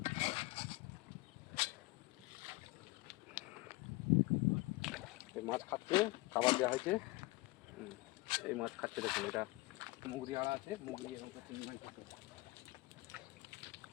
এই মাছ খাচ্ছে, খাবার দেওয়া হয়েছে। এই মাছ খাচ্ছে, দেখুন। এটা মুগরি আড়া আছে, মুগরি এবং চিংড়ি মাছ থাকে।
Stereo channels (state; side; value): quieter; right; 21.5 dB